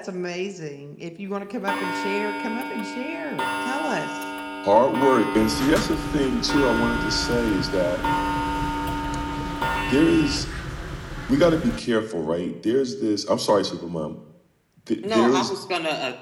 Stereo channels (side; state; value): both; identical; correlation 1.00